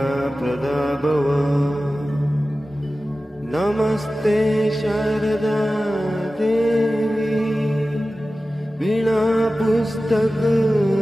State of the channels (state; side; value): normal; both; correlation 0.95